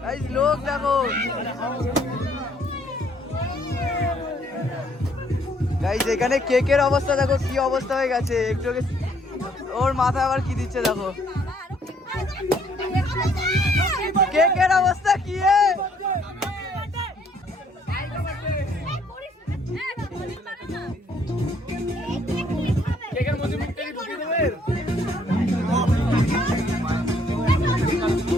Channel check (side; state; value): both; normal; correlation 0.65